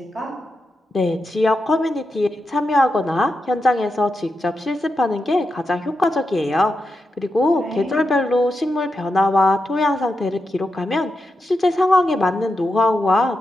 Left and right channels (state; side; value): normal; both; correlation 0.87